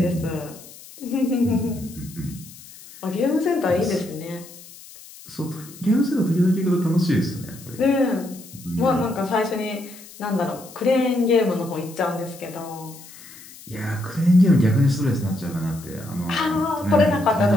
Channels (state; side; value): noise; left; hiss, 19 dB below the sound